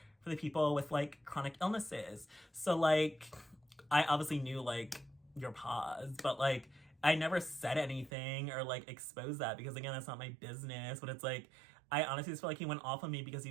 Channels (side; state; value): left; drops out; at 8.1 s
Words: for the people with chronic illnesses. So I obviously knew your pause, but I never said anything or exposed that because again, that's not my business. But it's I honestly just feel he went off on me because he